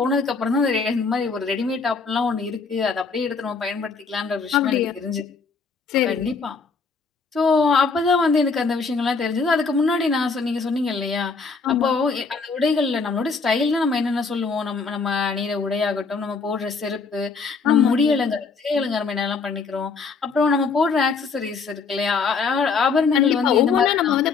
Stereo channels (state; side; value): quieter; right; 4.8 dB